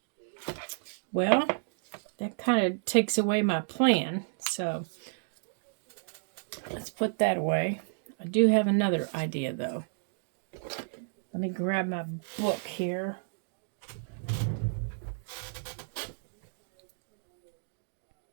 Well, that kind of takes away my plan, so let's put that away. I do have another idea, though. Let me grab my book here.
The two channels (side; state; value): left; silent; digital silence